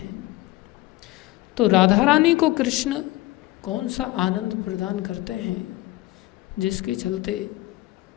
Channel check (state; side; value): quieter; right; 18.8 dB